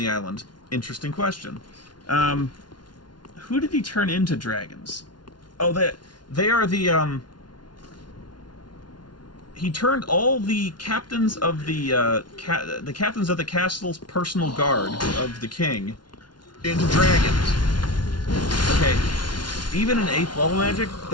island? Interesting question. Who did he turn into dragons? Oh, they are the, he turned all the captains of the captains of the castle's personal guard of the king into dragons. Okay, even in 8th level magic,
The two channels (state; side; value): late; right; 0.70 ms